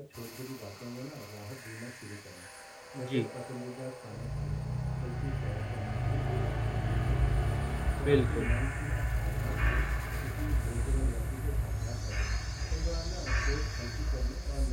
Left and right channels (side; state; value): both; identical; correlation 1.00